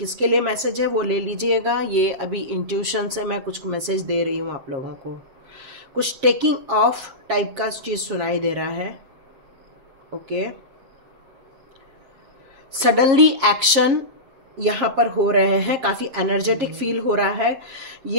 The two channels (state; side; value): late; left; 7.4 ms